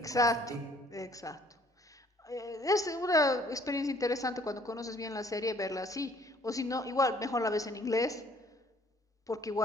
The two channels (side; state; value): both; normal; correlation 0.60